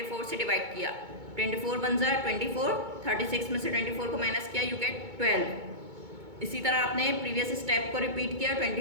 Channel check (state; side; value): late; left; 2.2 ms